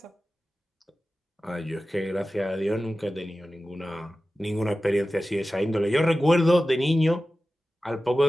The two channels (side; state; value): both; normal; correlation 0.95